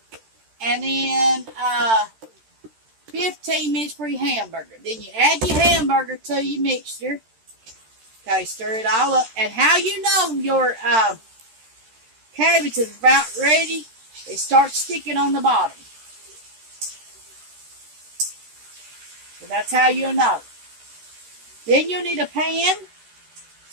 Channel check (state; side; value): late; left; 13 ms